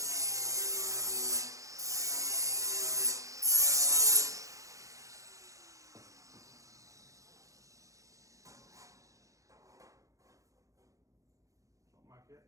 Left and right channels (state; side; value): late; left; 0.16 ms